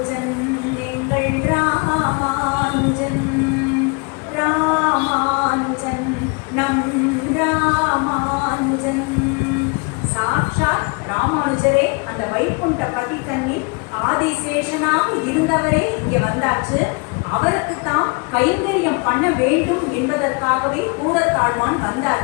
எங்கள் ராமானுஜன், ராமானுஜன் நம் ராமானுஜன். சாக்ஷாத் ராமானுஜரே அந்த வைகுண்ட பதி தண்ணீர் ஆதிசேஷனாக இருந்தவரே இங்க வந்தாச்சு. அவருக்கு தான் கைங்கரியம் பண்ண வேண்டும் என்பதற்காகவே பூரத்தாழ்வான்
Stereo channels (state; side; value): quieter; right; 32.1 dB